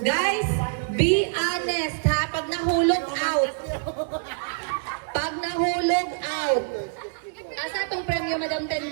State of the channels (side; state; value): left; silent; digital silence